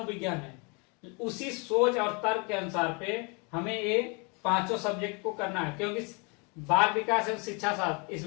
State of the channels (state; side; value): quieter; right; 32.3 dB